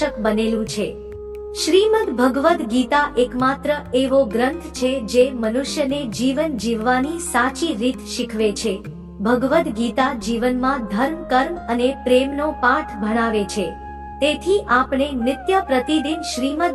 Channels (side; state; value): both; identical; correlation 1.00